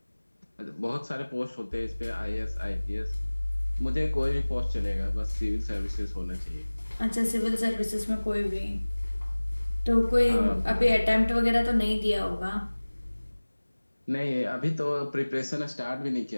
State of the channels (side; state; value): both; inverted; correlation -1.00